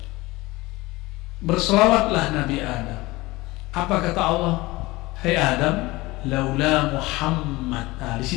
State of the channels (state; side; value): quieter; right; 20.8 dB